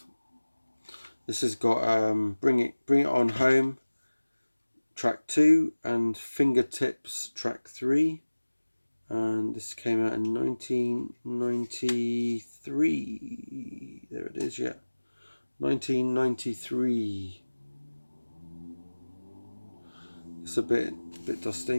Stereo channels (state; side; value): inverted; both; correlation -1.00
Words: This has got Bring It On Home, track 2, and Fingertips, track 3. And this came out in 1993. There it is, yeah. 1993. It's a bit